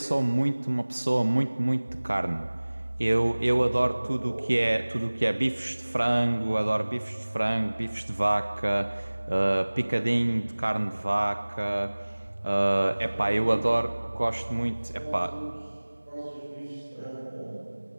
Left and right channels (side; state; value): both; inverted; correlation -1.00